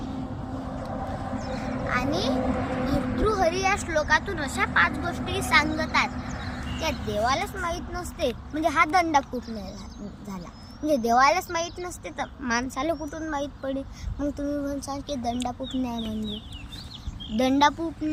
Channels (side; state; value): both; identical; correlation 1.00